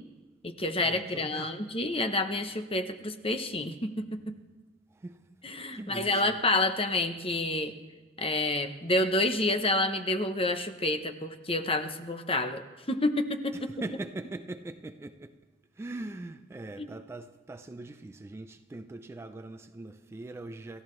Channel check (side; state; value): both; normal; correlation 0.26